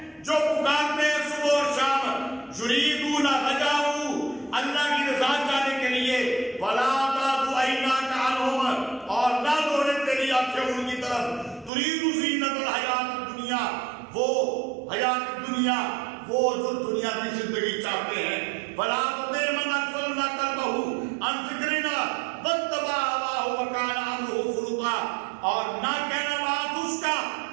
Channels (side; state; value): left; drops out; at 11.7 s